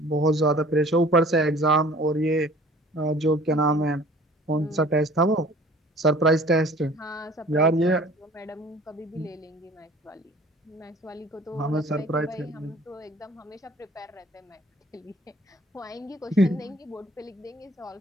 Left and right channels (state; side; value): normal; both; correlation 0.50